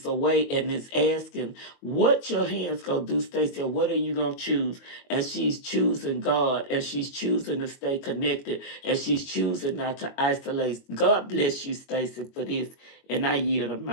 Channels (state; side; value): late; right; 21 ms